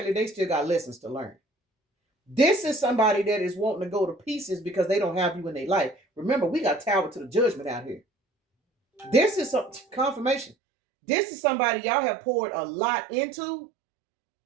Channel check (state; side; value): drops out; left; at 10.6 s